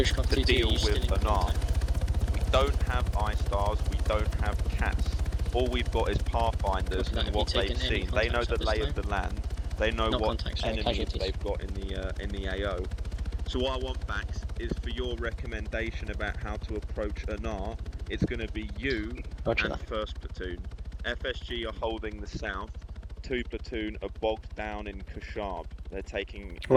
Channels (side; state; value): both; identical; correlation 1.00